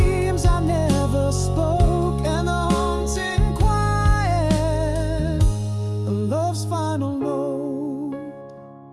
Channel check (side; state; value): both; identical; correlation 1.00